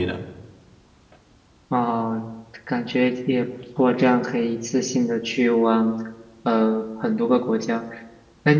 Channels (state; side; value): identical; both; correlation 1.00